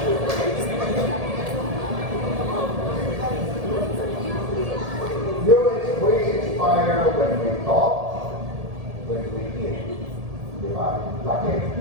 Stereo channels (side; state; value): left; late; 1.7 ms